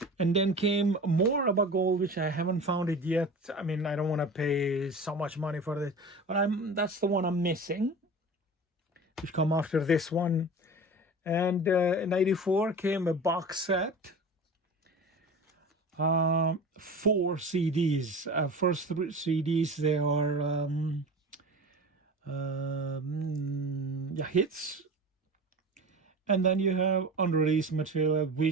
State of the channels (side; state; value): both; normal; correlation 0.34